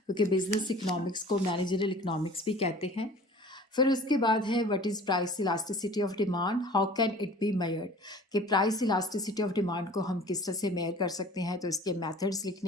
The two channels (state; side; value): normal; both; correlation 0.45